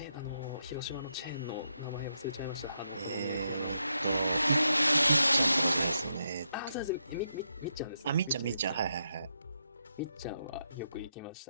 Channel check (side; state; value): both; inverted; correlation -0.81